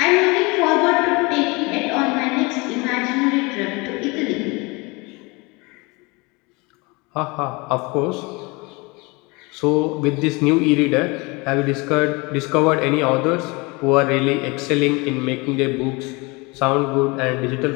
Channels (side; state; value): right; quieter; 26.5 dB